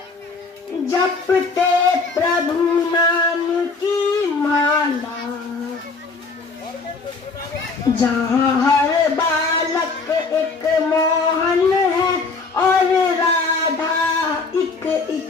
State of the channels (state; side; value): quieter; right; 4.2 dB